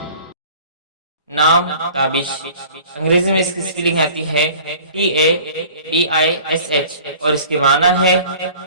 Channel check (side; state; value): both; inverted; correlation -0.46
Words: نام تابش، انگریزی میں اس کی سپیلنگ آتی ہے TABISH اور اس کے معنی ہے